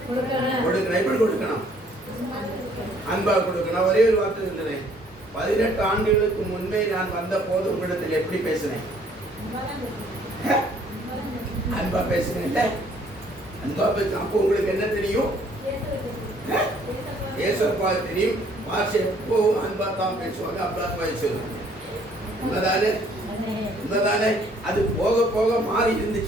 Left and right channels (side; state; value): both; normal; correlation 0.61